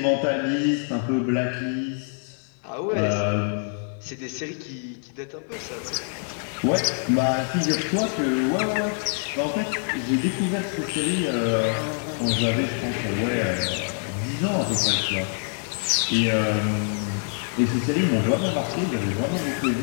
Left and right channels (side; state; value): right; silent; 56 dB below the other